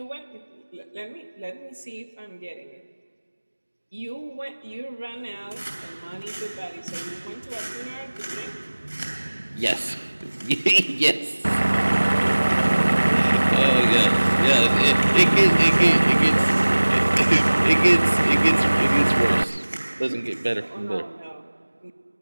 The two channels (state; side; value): inverted; both; correlation -1.00